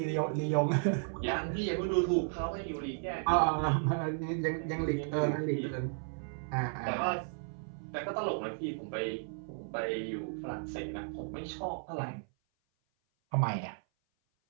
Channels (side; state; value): left; silent; 55 dB below the other